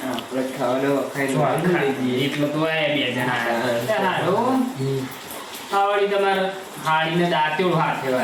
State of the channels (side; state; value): both; identical; correlation 1.00